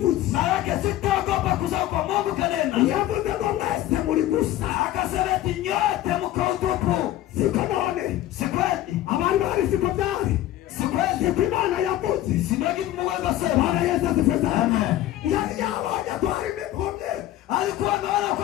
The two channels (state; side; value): quieter; right; 13.9 dB